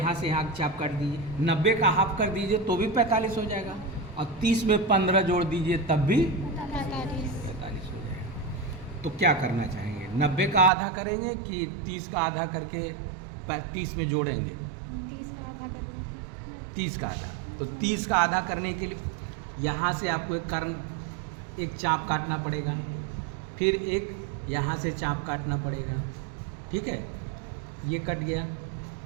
से यहाँ चाप काट दीजिए, 90 का हाफ कर दीजिए तो भी 45 हो जाएगा, और 30 में 15 जोड़ दीजिए तब भी 45 हो जाएगा। तो क्या करना चाहेंगे, 90 का आधा करेंगे कि 30 का आधा करके 30 में जोड़ेंगे? 30 का आधा कर लीजिए। 30 का आधा, तो 30 का आधा करने के लिए यहाँ से आपको एक चाप काटना पड़ेगा, फिर एक यहाँ से चाप काटना पड़ेगा, ठीक है। ये कट गया।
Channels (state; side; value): drops out; left; at 10.7 s